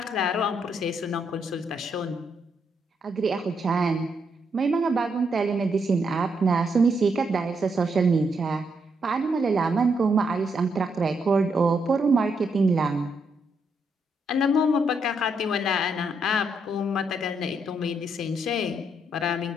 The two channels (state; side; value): normal; both; correlation 0.77